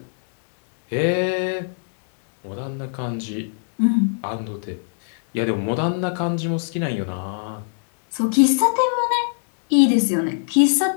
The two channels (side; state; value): right; silent; digital silence